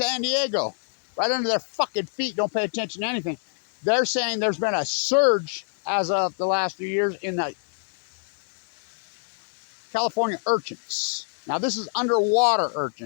Diego. Right under their fucking feet. Don't pay attention to anything. They're saying there's been a surge as of the last few years in the California urchins. Now this is underwater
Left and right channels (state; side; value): silent; right; digital silence